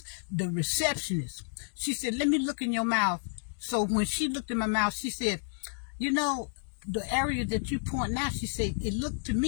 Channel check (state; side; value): silent; right; 57 dB below the other